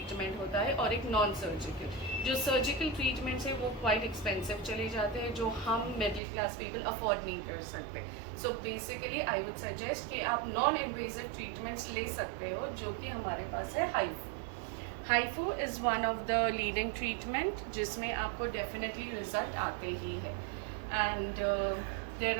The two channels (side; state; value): left; drops out; at 6.2 s